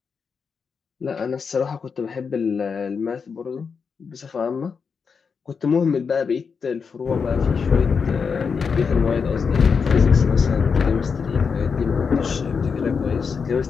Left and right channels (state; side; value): quieter; right; 5.8 dB